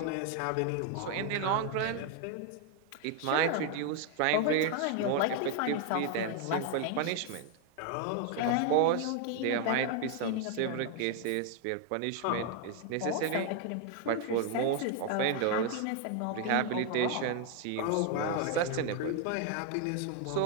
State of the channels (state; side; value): different; both; correlation 0.00